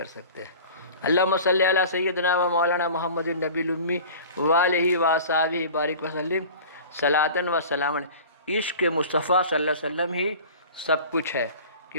سکتے۔ اللہم صلی علی سیدنا و مولانا محمد النبی الامی والہ وصحبہ بارک وسلم صلاۃ و سلام علیہ۔ عشق مصطفیٰ صلی اللہ علیہ وسلم ہی سب کچھ ہے،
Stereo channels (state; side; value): inverted; both; correlation -0.40